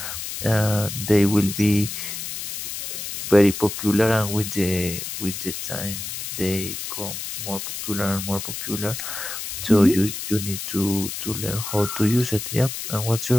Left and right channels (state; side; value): noise; left; hiss, 6 dB below the sound